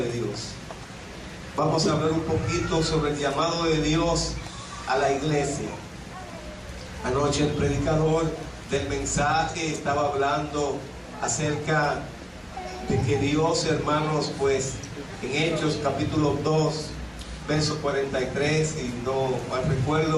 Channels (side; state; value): both; identical; correlation 1.00